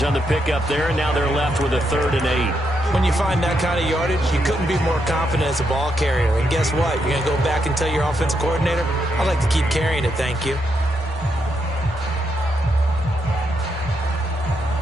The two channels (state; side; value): normal; both; correlation 0.80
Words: on the pickup there, and now they're left with a 3rd and 8. When you find that kind of yardage, you couldn't be more confident as a ball carrier. And guess what? You're going to go back and tell your offensive coordinator, I'd like to keep carrying it, thank you.